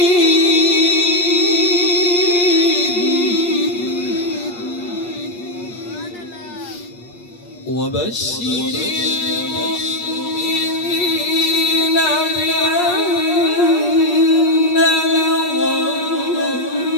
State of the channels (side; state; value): right; late; 8.5 ms